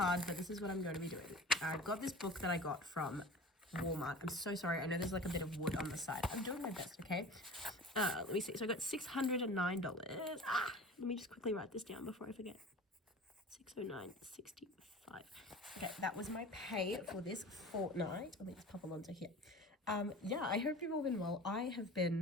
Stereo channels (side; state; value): both; normal; correlation 0.38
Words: but this is what I'm going to be doing. I've got this book that I got from Walmart. I'm so sorry. I know there's like a bit of wood on the side. I'm doing my best, okay? Let me see. So I got $609. Let me just quickly write this down before I forget. 609.65. Okay, that was my pay for this fortnight. Let me just pop Alonzo here. I hope you've all been well. I have